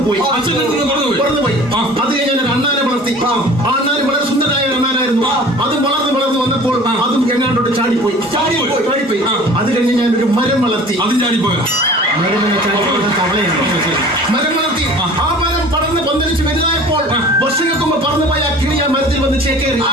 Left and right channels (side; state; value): both; normal; correlation 0.44